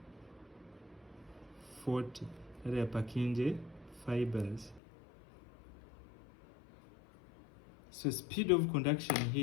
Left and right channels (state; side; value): drops out; right; at 4.8 s